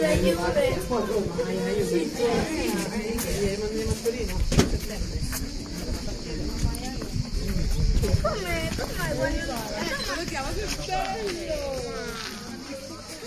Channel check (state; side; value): identical; both; correlation 1.00